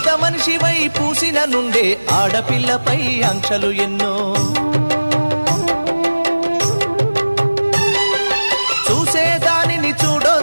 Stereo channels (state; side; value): inverted; both; correlation -1.00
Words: మనిషివై పూసిన నుండే ఆడపిల్లపై ఆంక్షలు ఎన్నో చూసేదానిని